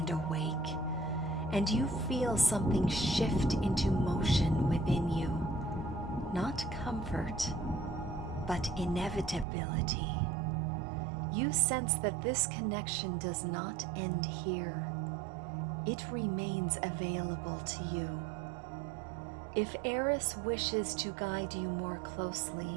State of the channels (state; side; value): drops out; left; at 9.5 s